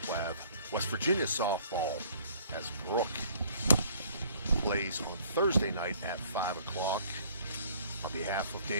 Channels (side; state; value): both; inverted; correlation -0.56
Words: we'll have West Virginia softball as Brooke plays on Thursday night at 5 o'clock. On behalf of